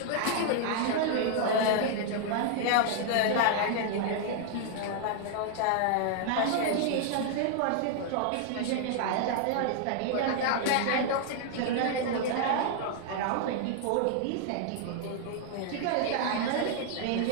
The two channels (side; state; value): both; different; correlation 0.00